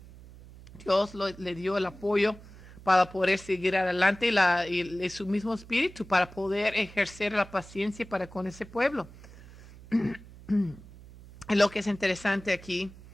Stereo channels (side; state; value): right; noise; hum, 19 dB below the sound